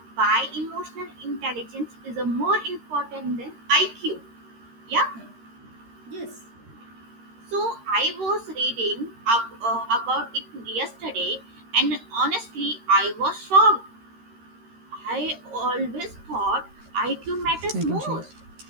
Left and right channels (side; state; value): left; late; 13 ms